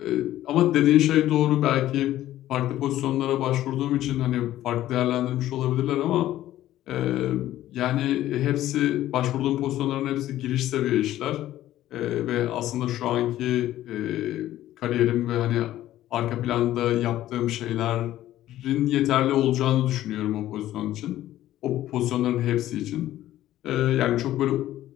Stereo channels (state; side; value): quieter; right; 13.8 dB